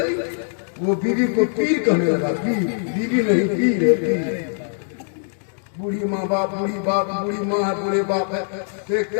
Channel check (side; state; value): right; silent; digital silence